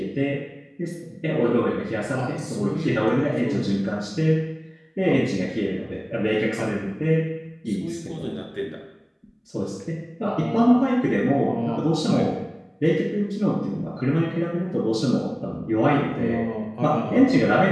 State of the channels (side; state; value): both; identical; correlation 1.00